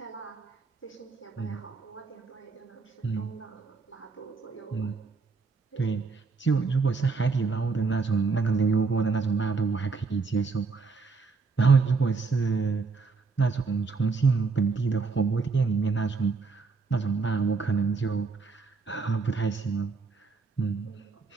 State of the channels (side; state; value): left; quieter; 4.4 dB